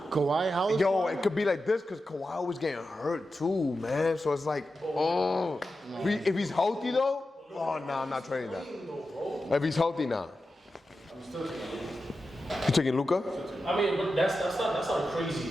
Kawhi, how is Yo, it could be like this because Kawhi was getting hurt too, man. So it's like, if he's healthy though, oh no, I'm not trading that. If he's healthy now, you taking Luka? I mean, but that's not a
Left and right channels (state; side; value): normal; both; correlation 0.91